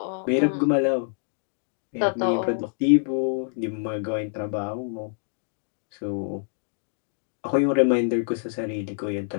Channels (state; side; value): silent; right; digital silence